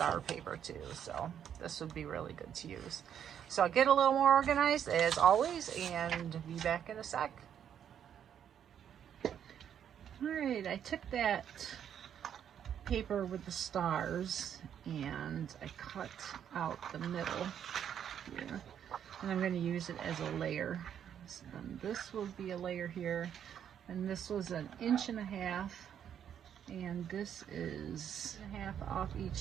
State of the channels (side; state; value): left; quieter; 9.1 dB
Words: paper too, so this would be really good to use. So I'll get a little more organized as always and be back in a sec. All right, I took that paper with the stars and I cut out the middle here, and I'm going to use it as a layer. And this will be a layer here, and this was 1.5 inches, and this is 1.5 off each